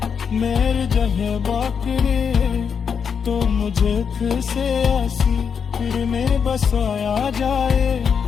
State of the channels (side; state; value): right; quieter; 6.6 dB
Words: मेरे जहे बाकरे, तो मुझे फिर से ऐसी फिर में बसाया जाए।